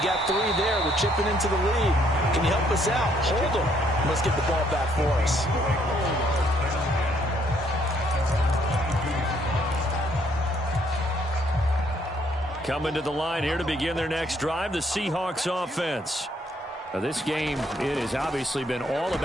got 3 there. We're chipping into the lead. Can you help us out? Hold them. Let's get the ball back for us. Coming to the line here to begin their next drive, the Seahawks offense. Now, this game, it has obviously been all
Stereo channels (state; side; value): normal; both; correlation 0.68